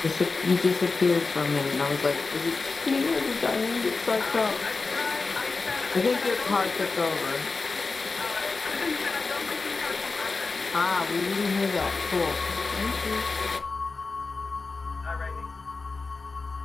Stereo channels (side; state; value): right; quieter; 4.0 dB